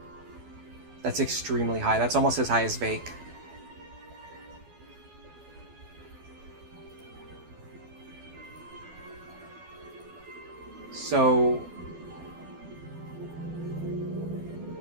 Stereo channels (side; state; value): left; late; 12 ms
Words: That's extremely high. That's almost as high as Vake. So...